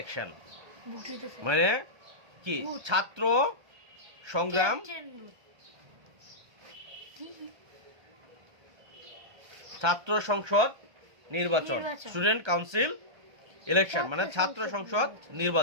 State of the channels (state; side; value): late; left; 1.3 ms